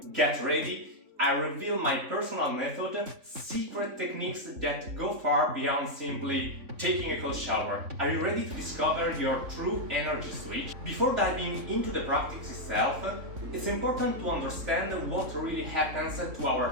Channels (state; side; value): late; left; 3.5 ms